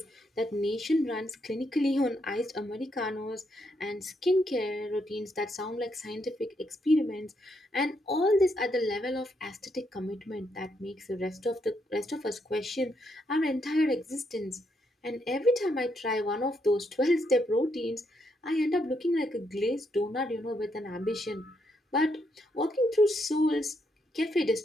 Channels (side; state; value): both; normal; correlation 0.77